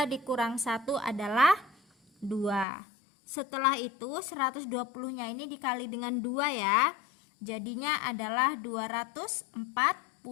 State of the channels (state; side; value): drops out; right; at 2.7 s